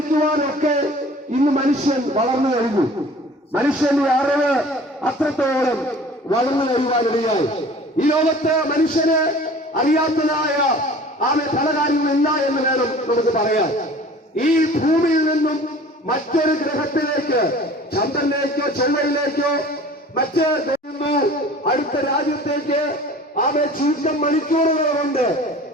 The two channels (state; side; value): normal; both; correlation 0.45